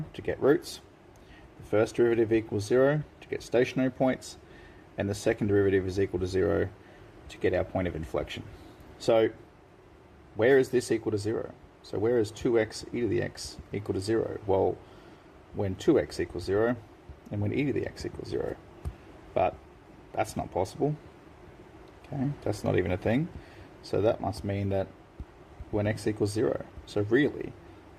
to get roots, the first derivative equals 0 to get stationary points, and the second derivative is equal to 0 to get our point of inflection. So where is this equal to 0? So where is 2x e to the x equal to 0? Well, when 2x equals 0 and when e to the x equals 0. But that's not possible. Okay, that's not even a thing. So that must mean that when x equals 0. So really,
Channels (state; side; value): identical; both; correlation 1.00